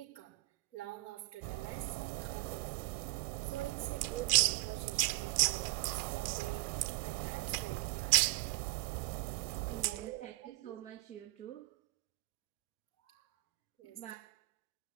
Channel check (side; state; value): left; quieter; 21.2 dB